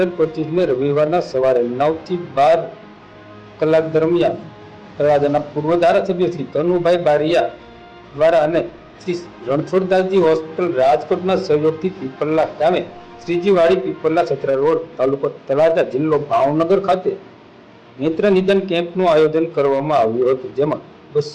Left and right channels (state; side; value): identical; both; correlation 1.00